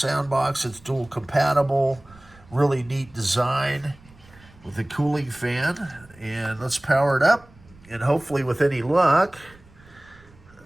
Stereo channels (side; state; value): right; noise; rumble, 25 dB below the sound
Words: box. It's dual compatible, really neat design with a cooling fan. And let's power it up. And hopefully with any luck,